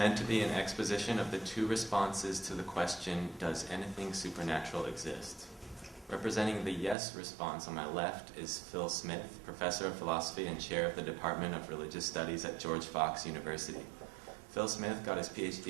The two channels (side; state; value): left; drops out; at 7.0 s